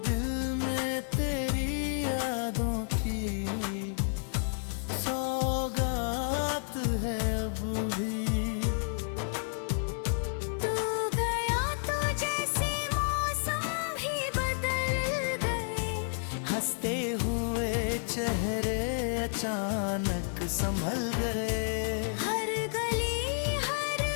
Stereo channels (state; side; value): silent; right; digital silence